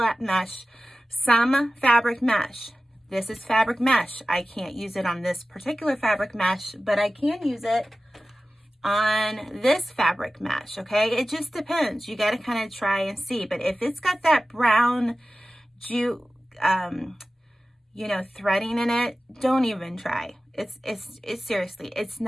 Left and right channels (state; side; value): normal; both; correlation 0.95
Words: mesh, some fabric mesh. This is fabric mesh. I can't use it on this particular fabric mesh, but I can use it on this fabric mesh, okay? It just depends. You got to kind of try and see. But if it's got that brown jute, threading in it, don't even try. It's seriously, it's